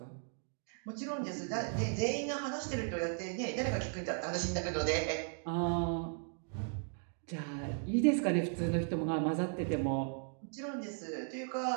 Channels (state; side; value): silent; left; 53 dB below the other